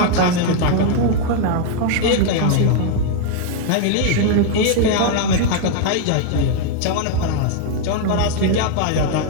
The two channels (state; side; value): different; both; correlation 0.00